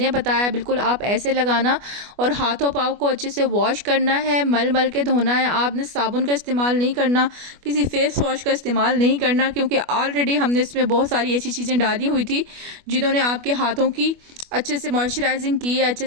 बताया बिल्कुल आप ऐसे लगाना और हाथों पाँव को अच्छे से वॉश करना है, मल मल के धोना है। आपने साबुन का इस्तेमाल नहीं करना करना, किसी फेस वॉश का इस्तेमाल नहीं करना, क्योंकि ऑलरेडी हमने इसमें बहुत सारी ऐसी चीज़ें डाली हुई थी जिन्होंने आपके हाथों की अच्छे से मॉइस्चराइजिंग की है, अच्छे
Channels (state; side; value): late; left; 25 ms